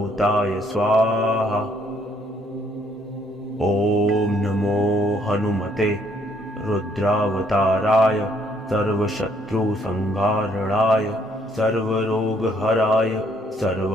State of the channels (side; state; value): both; normal; correlation 0.67